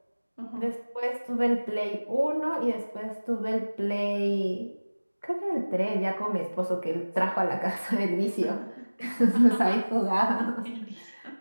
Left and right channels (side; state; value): both; inverted; correlation -1.00